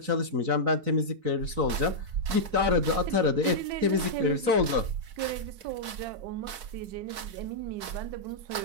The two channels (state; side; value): late; left; 4.6 ms